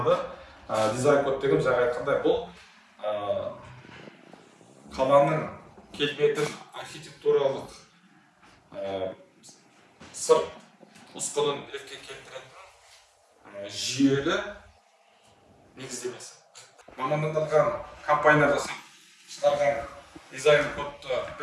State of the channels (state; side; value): identical; both; correlation 1.00